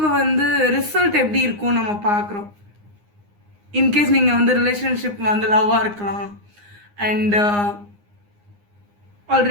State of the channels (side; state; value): left; late; 9.7 ms